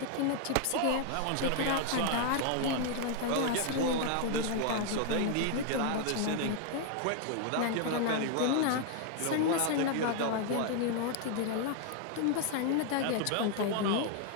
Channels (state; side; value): different; both; correlation 0.00